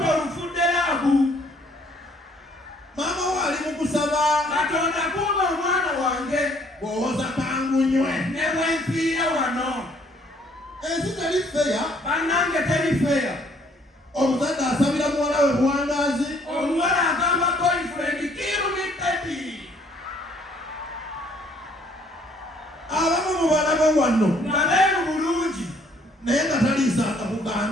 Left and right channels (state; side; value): normal; both; correlation 0.63